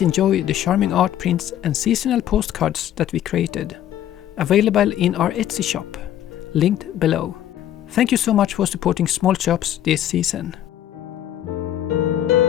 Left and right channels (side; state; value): right; quieter; 11.5 dB